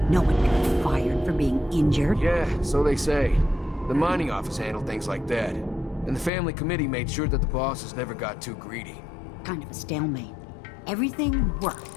No one got fired for being injured. Yeah, so they say. The mining office handled things like that. And the family committee made sure that the bosses never got too greedy. Kind of a stalemate. Everything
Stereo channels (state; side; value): drops out; right; at 6.3 s